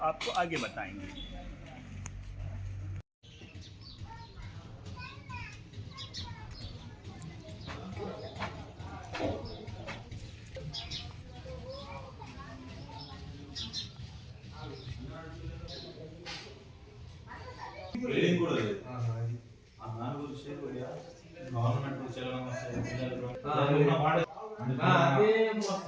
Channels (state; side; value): identical; both; correlation 1.00